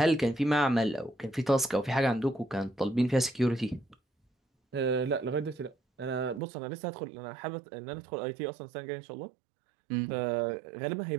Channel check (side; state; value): left; drops out; at 6.4 s